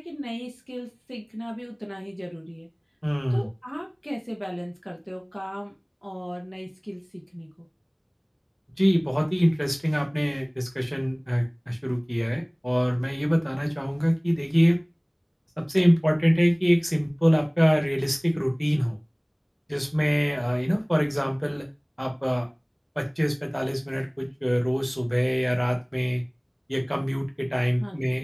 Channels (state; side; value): identical; both; correlation 1.00